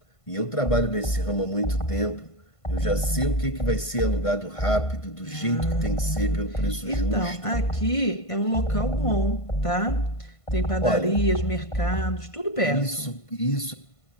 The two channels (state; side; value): late; right; 1.5 ms